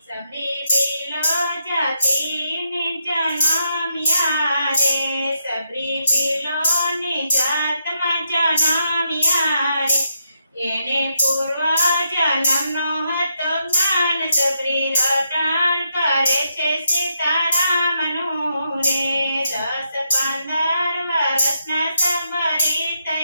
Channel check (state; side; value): inverted; both; correlation -0.80